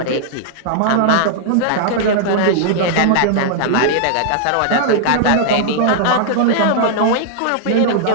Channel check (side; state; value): both; different; correlation -0.01